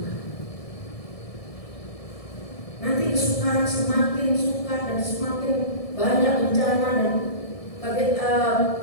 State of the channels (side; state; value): right; late; 1.7 ms